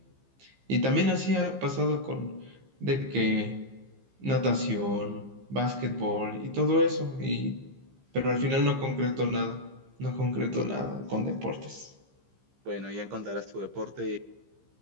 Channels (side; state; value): left; late; 15 ms